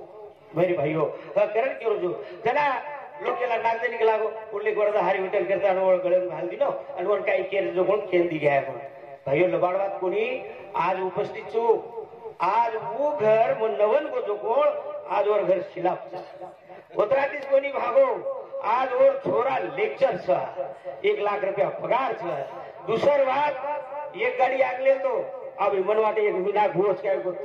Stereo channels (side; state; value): both; identical; correlation 1.00